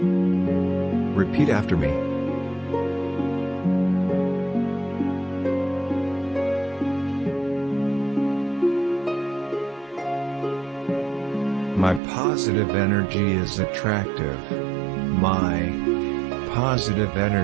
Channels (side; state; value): left; drops out; at 12.0 s